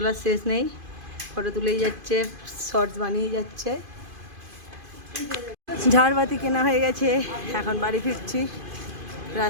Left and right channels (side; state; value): left; late; 2.5 ms